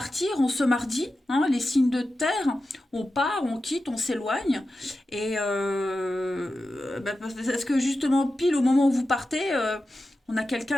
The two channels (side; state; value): both; normal; correlation 0.92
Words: en ce mardi, hein, les signes de terre, on part, on quitte, on s'éloigne. Et parce que justement, pile au moment où vous partez, on a